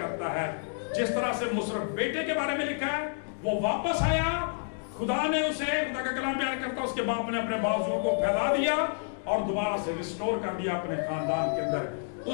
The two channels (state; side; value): silent; right; digital silence